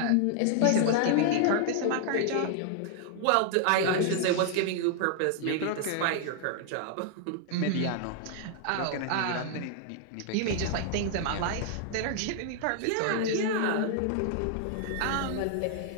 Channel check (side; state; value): both; different; correlation 0.00